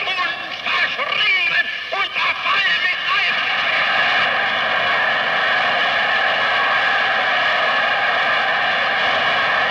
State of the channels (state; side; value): identical; both; correlation 1.00